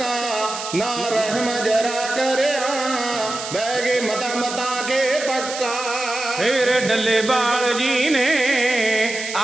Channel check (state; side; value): noise; right; hiss, 8 dB below the sound